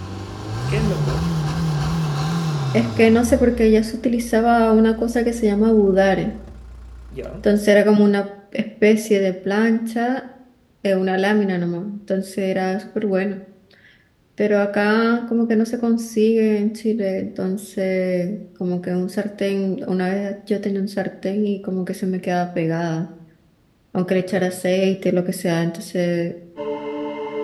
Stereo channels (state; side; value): identical; both; correlation 1.00